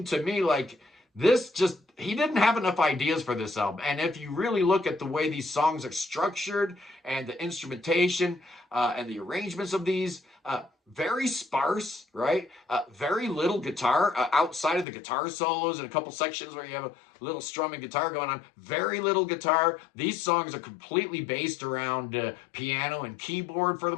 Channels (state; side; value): drops out; right; at 14.9 s